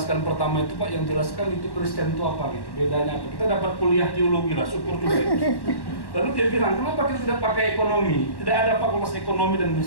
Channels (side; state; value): right; late; 1.1 ms